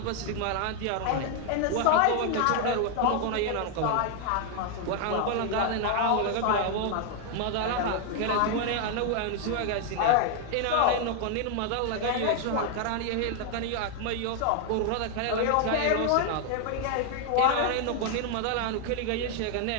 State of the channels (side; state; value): both; different; correlation 0.00